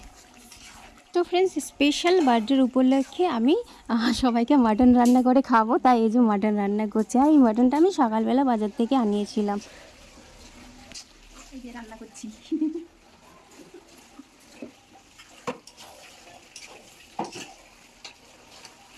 তো ফ্রেন্ডস, স্পেশাল বার্থডের উপলক্ষে আমি সবাইকে মাটন রান্না করে খাবো, তাই এই যে মাটন রান্না করছি। আর এই মাটনটা আমি সকালবেলা বাজার থেকে আনিয়েছিলাম। এই যে রান্না করছি।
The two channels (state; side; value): identical; both; correlation 1.00